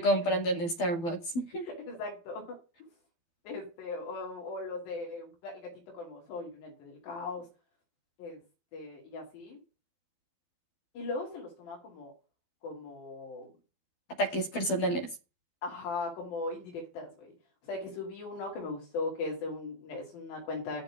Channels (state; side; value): late; right; 12 ms